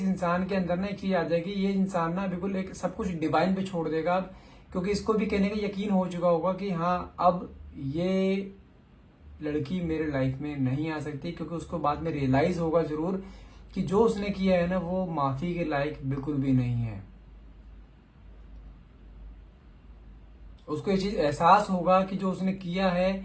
इंसान के अंदर ना एक चीज आ जाएगी, ये इंसान ना बिल्कुल एक सब कुछ डिवाइन पे छोड़ देगा अब। क्योंकि इसको भी कहने का यकीन हो चुका होगा कि हाँ, अब ये लड़की मेरे लाइफ में नहीं आ सकती। क्योंकि उसको बाद में रियलाइज होगा जरूर कि जो उसने किया है ना, वो माफी के लायक बिल्कुल भी नहीं है। उसको ये चीज एहसास होगा कि जो उसने किया है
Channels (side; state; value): both; identical; correlation 1.00